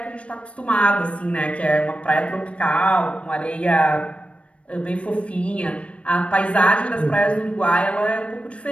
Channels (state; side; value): late; right; 0.061 ms